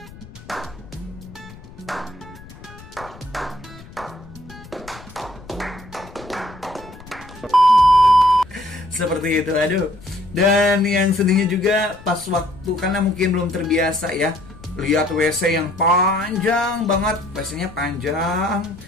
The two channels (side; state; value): left; noise; rumble, 19 dB below the sound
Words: Seperti itu, aduh. Dan yang sedihnya juga pas waktu, karena mungkin belum terbiasa ya, lihat WC yang panjang banget, WC-nya panjang,